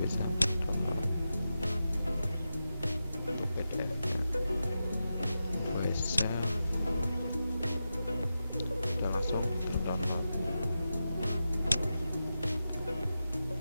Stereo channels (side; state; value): both; inverted; correlation -0.90